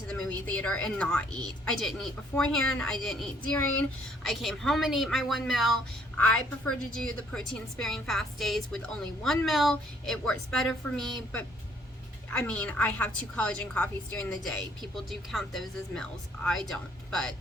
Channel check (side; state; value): both; normal; correlation 0.64